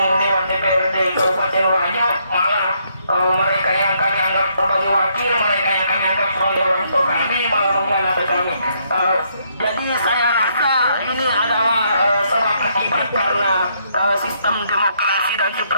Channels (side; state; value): both; inverted; correlation -0.73